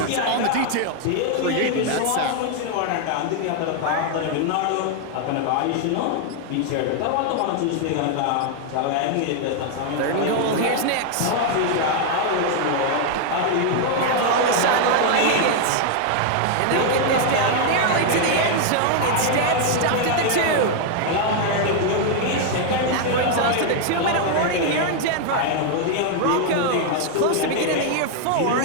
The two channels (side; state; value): both; different; correlation 0.00